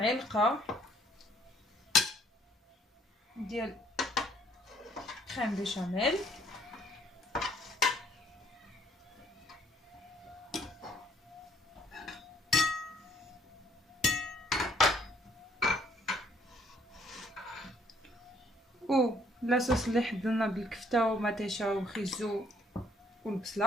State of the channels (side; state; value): both; normal; correlation 0.64